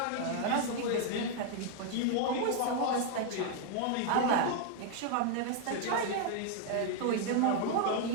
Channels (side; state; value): both; different; correlation 0.00